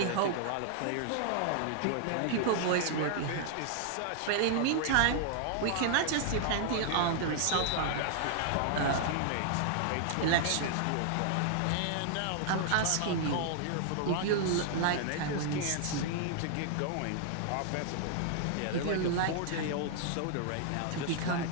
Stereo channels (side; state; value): both; different; correlation -0.01